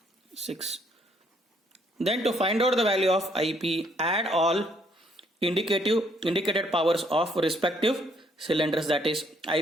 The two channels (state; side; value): normal; both; correlation 0.68